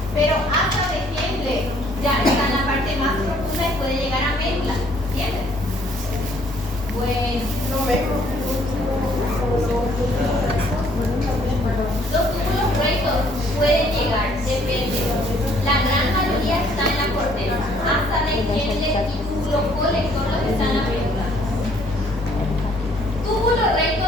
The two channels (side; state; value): both; normal; correlation 0.63